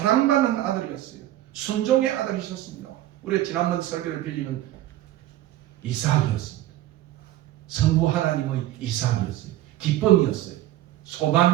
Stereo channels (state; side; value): quieter; left; 14.4 dB